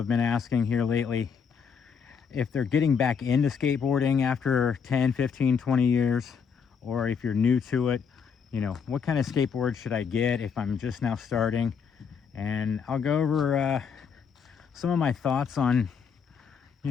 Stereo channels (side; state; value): right; quieter; 6.5 dB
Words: been asking here lately if they're getting back into skateboarding after 10, 15, 20 years, or if you're new to it, what kind of skateboard should I get if I'm just now starting? And I'll go over some of my thoughts on,